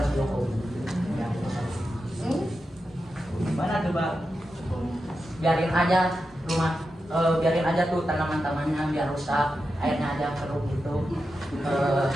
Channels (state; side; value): normal; both; correlation 0.89